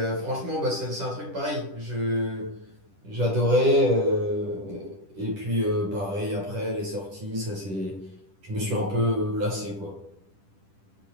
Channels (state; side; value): late; left; 10 ms